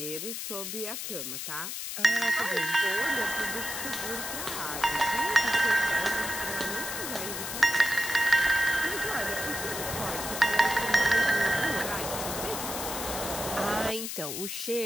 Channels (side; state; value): left; noise; hiss, 5 dB below the sound